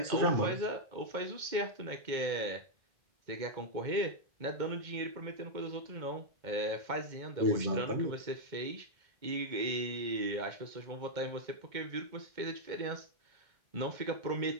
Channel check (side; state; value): left; late; 2.1 ms